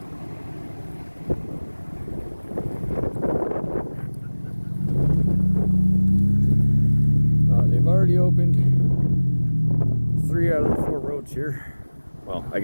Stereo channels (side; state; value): both; inverted; correlation -1.00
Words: They've already opened 3 out of the 4 roads here. Well, I